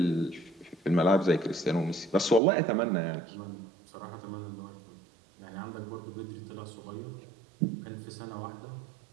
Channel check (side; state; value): left; drops out; at 2.4 s